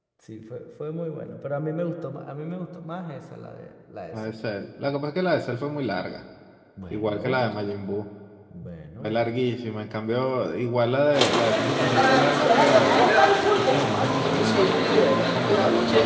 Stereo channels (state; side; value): identical; both; correlation 1.00